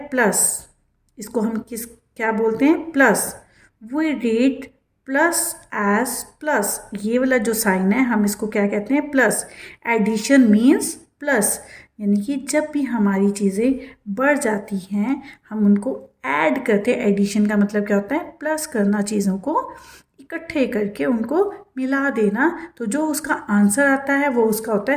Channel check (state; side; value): identical; both; correlation 1.00